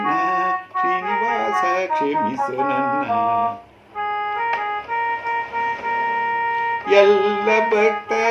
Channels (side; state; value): both; identical; correlation 1.00